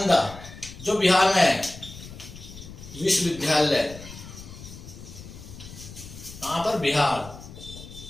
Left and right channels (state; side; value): noise; left; rumble, 15 dB below the sound